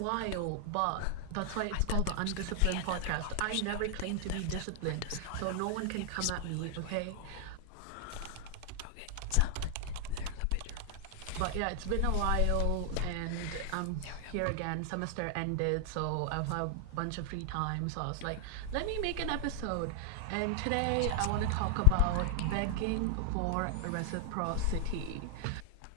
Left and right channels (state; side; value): different; both; correlation 0.00